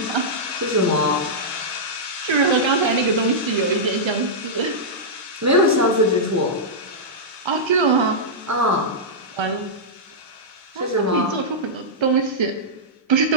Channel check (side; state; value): both; normal; correlation -0.11